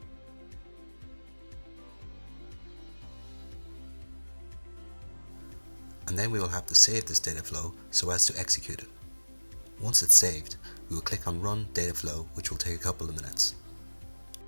And then we will have to save this data flow so as to execute it. Once it's saved, we will click on Run Data Flow, which will take a couple of minutes.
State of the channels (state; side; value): inverted; both; correlation -1.00